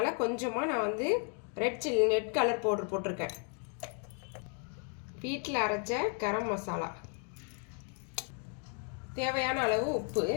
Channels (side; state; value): right; quieter; 38.0 dB